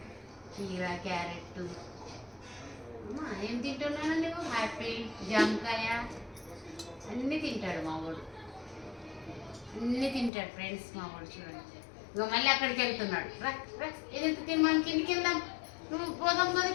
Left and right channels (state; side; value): drops out; right; at 10.3 s